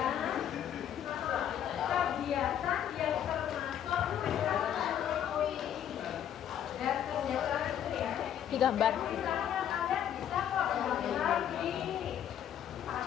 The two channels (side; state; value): right; quieter; 9.9 dB